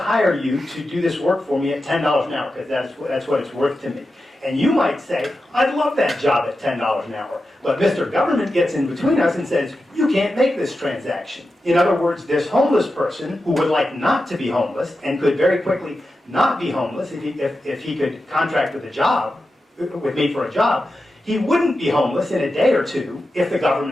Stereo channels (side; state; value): both; normal; correlation 0.91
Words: you to do this work for me at $10 an hour because that's what it's worth to me. And you might say, I'd love that job at $10 an hour. But Mr. Government gets in between us and says, you can't make this transaction. In other words, this homeless person who would like not to be homeless and could very quickly not be homeless if he could contract with me for a job, he wouldn't be homeless in a day or two if the